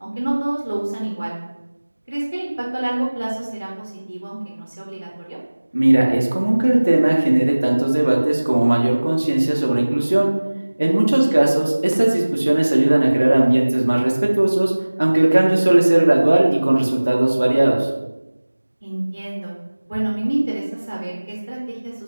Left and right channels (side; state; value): both; inverted; correlation -1.00